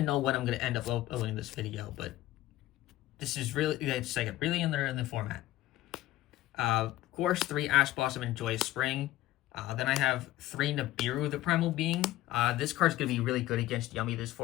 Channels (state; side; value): quieter; right; 15.7 dB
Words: know when I'm going to end up uploading this video, but this is really, it's like really in the format. Of course, 3 Ash Blossom and Joyous Spring. Then I have 3 Nibiru, the Primal Being. This card's going to be really good against Yummy this